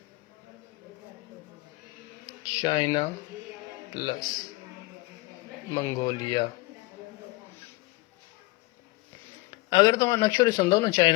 China plus Mongolia. अगरि तव्हां नक्शो ॾिसंदव न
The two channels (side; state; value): right; quieter; 22.0 dB